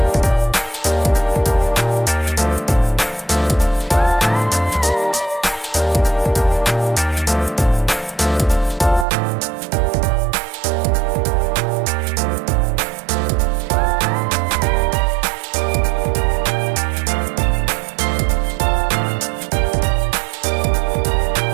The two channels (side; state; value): left; drops out; at 9.1 s